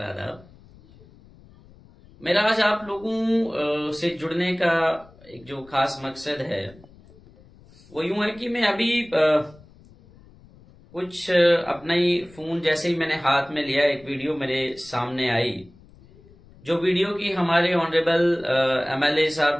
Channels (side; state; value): left; noise; rumble, 25 dB below the sound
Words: आदाब। मेरा आज आप लोगों से जुड़ने का एक जो खास मकसद है वो यूं है कि मैं अभी कुछ अपना ही फोन जैसे ही मैंने हाथ में लिया, एक वीडियो मेरे सामने आई, जो वीडियो की हमारे ऑनरेबल एमएलए